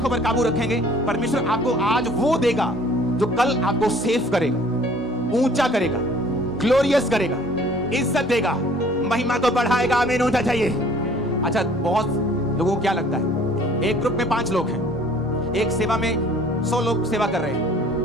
पर काबू रखेंगे, परमेश्वर आपको आज वो देगा जो कल आपको सेव करेगा, ऊंचा करेगा, ग्लोरियस करेगा, इज्जत देगा, महिमा को बढ़ाएगा। आमीन होना चाहिए। अच्छा, बहुत लोगों को क्या लगता है, एक ग्रुप में 5 लोग हैं, एक सेवा में 100 लोग सेवा कर रहे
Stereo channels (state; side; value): normal; both; correlation 0.54